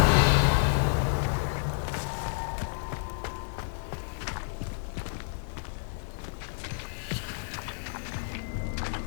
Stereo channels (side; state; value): right; silent; 58 dB below the other